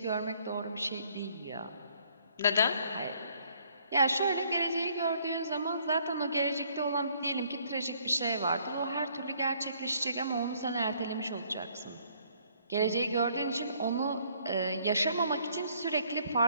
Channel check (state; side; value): inverted; both; correlation -0.64